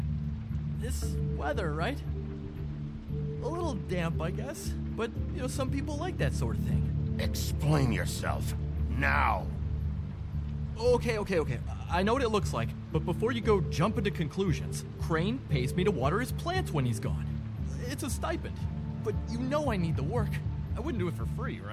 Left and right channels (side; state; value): both; identical; correlation 1.00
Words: This weather, right? A little damp, I guess, but, some people like that sort of thing. Explain yourself. Now! Okay. I know what it looks like, but before you go jumping to conclusions, Crane pays me to water his plants when he's gone. It's a stipend, but I need the work. I wouldn't do it for free,